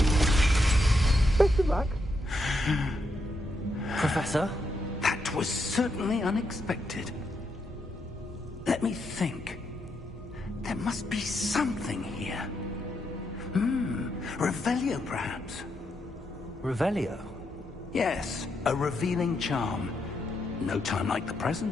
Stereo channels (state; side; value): normal; both; correlation 0.80